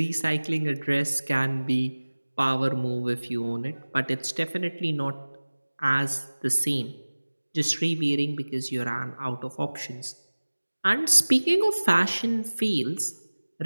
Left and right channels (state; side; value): inverted; both; correlation -1.00